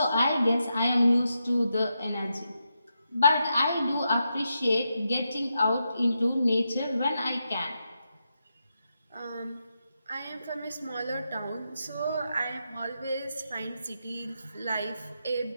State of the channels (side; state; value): both; inverted; correlation -0.85